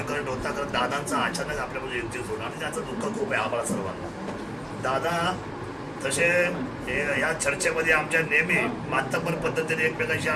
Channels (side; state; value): both; identical; correlation 1.00